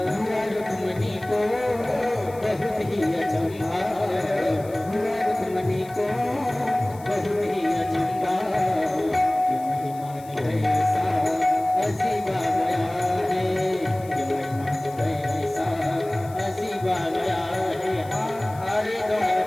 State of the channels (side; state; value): left; noise; hiss, 23 dB below the sound